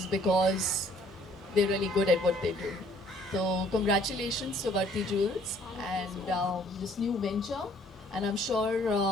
because they're really good at what they do. So congratulations to Varti Jewels and this new venture. And I'm sure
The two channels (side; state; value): both; normal; correlation 0.60